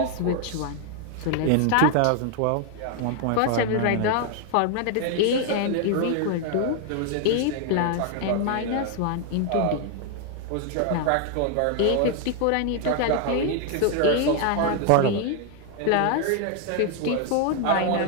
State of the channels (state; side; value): different; both; correlation 0.00